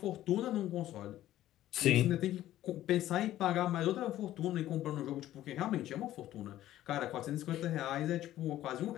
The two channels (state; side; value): quieter; right; 13.6 dB